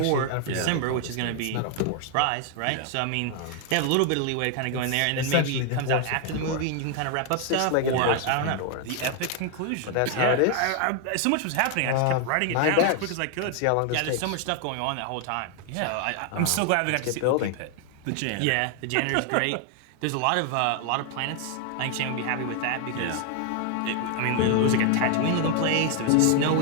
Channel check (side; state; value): both; different; correlation 0.00